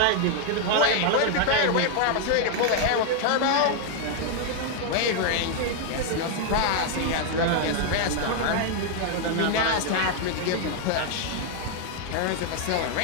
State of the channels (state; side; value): different; both; correlation 0.00